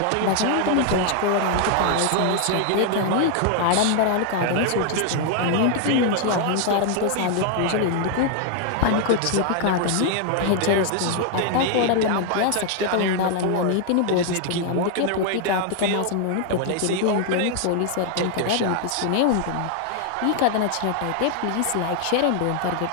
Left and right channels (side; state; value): both; different; correlation 0.00